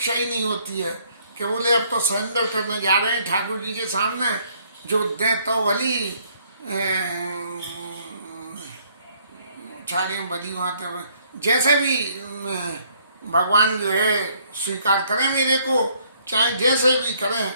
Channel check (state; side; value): inverted; both; correlation -0.66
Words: ही नहीं होती है कि बोले अब तो सरेंडर करने जा रहे हैं ठाकुर जी के सामने, जो दे तो भली छाड़ी बदी वहाँ जैसे भी भगवान जो है स्वीकार करें मेरे को, चाहे जैसे भी करें